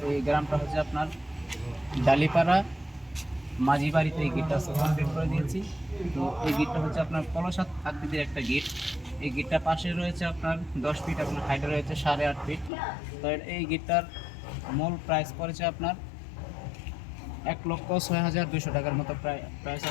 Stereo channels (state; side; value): drops out; right; at 12.7 s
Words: এই গ্রামটা হচ্ছে আপনার ডালিপাড়া মাঝি বাড়িতে এই গিটটা কমপ্লিট করে দিয়েছি। তো এই গিটটা হচ্ছে আপনার কলসাত আকৃতির একটা গিট। এই গিটটা পাশে রয়েছে আপনার 10 ফিট, আপনার হাইটে রয়েছে 8.5 ফিট। তো এই গিটটার মূল প্রাইস পড়েছে আপনার 1,06,200 টাকার মতো প্রাইস